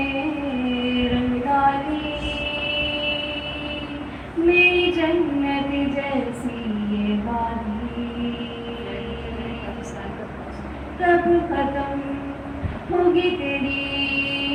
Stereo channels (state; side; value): identical; both; correlation 1.00